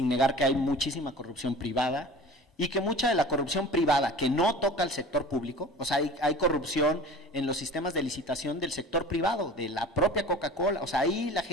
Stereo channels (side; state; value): both; normal; correlation 0.40